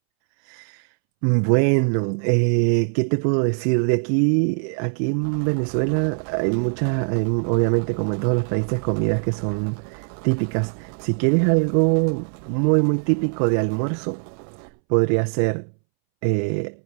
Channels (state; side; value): silent; left; 65 dB below the other